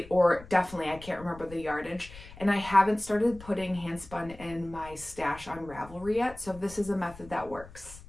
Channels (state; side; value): noise; left; rumble, 18 dB below the sound